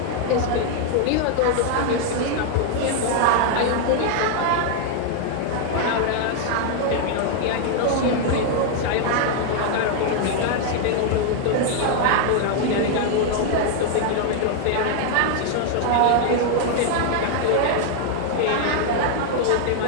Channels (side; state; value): both; different; correlation 0.00